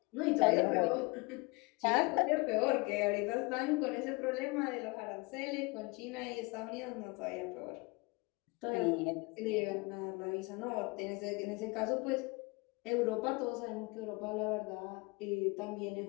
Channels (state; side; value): quieter; right; 27.0 dB